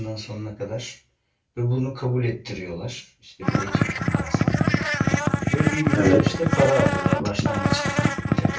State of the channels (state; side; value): identical; both; correlation 1.00